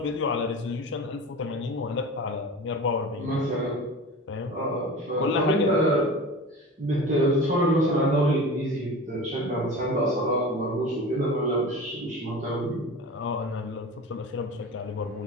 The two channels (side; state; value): both; normal; correlation 0.34